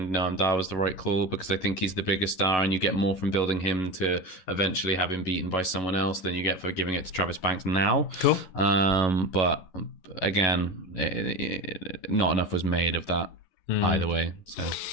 Noam Dar was the right call because I think he's the biggest star, and you get more from building him to eventually have him beaten by someone else than you get for giving it to Travis Banks now. Cool. But again, not enough was made of that either way. So.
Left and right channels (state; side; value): late; right; 11 ms